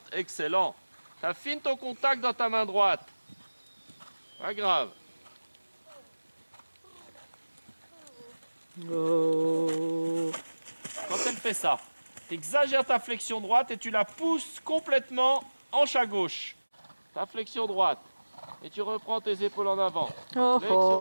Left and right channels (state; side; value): inverted; both; correlation -1.00